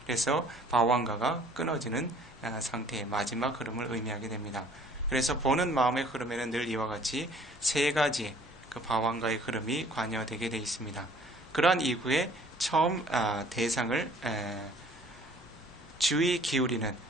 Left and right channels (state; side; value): normal; both; correlation 0.55